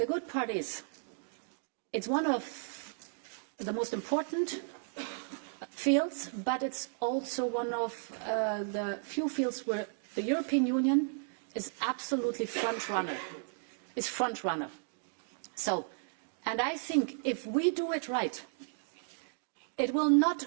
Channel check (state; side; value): silent; left; digital silence